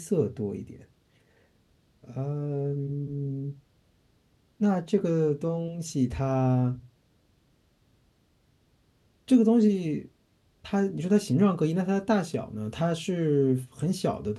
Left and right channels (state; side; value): identical; both; correlation 1.00